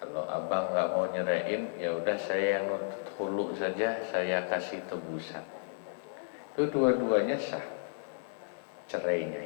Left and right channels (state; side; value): silent; right; digital silence